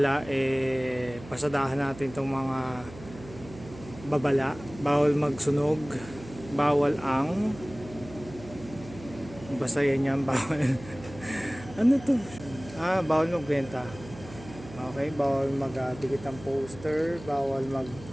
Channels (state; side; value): noise; right; hum, 16 dB below the sound